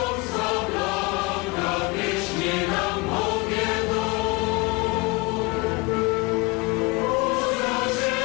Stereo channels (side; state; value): right; quieter; 25.9 dB